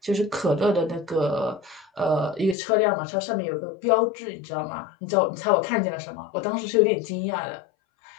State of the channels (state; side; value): drops out; right; at 2.6 s